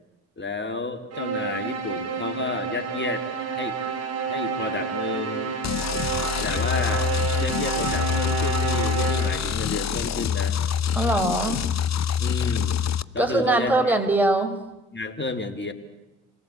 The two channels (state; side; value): normal; both; correlation 0.37